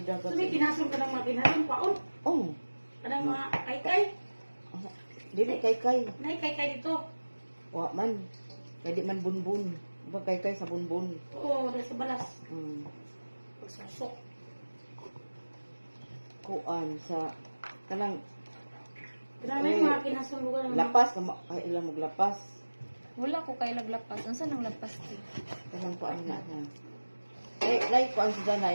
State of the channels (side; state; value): both; inverted; correlation -1.00